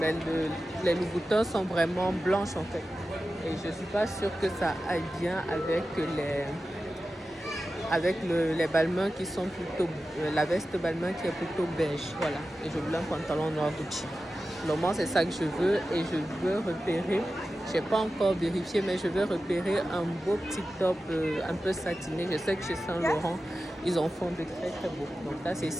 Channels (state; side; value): normal; both; correlation 0.93